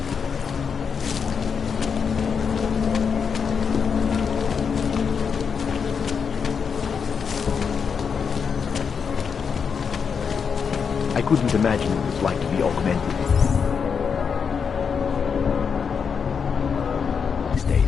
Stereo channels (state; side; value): quieter; right; 6.3 dB